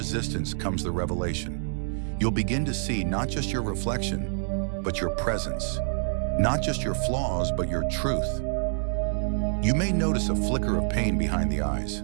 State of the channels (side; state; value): left; silent; digital silence